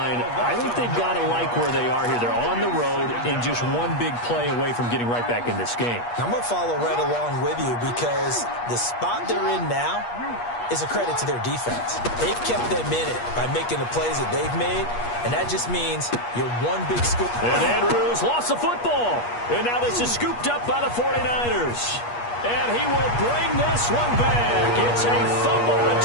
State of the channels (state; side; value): late; right; 8.4 ms